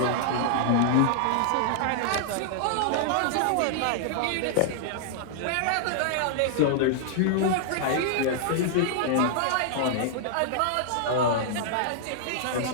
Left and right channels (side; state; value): both; different; correlation -0.01